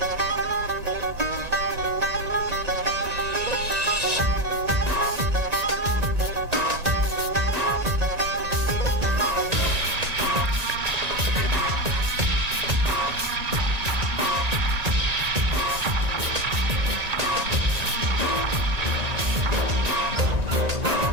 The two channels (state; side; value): late; left; 1.9 ms